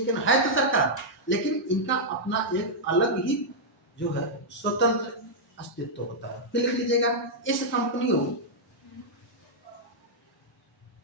है ना, है तो सरकार, लेकिन इनका अपना एक अलग ही जो है स्वतंत्र अस्तित्व होता है। फिर लिख लीजिएगा, इस कंपनियों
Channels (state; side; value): normal; both; correlation -0.06